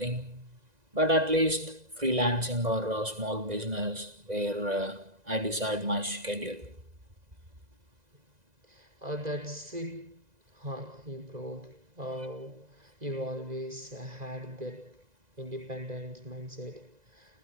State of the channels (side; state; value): left; late; 2.0 ms